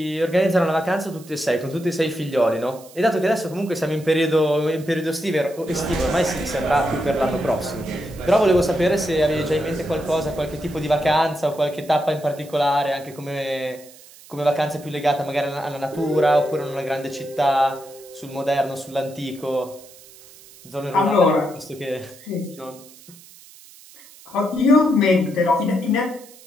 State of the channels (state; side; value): noise; right; hiss, 22 dB below the sound